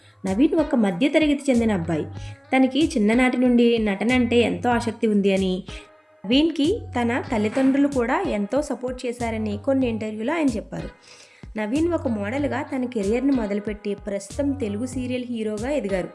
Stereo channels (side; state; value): both; identical; correlation 1.00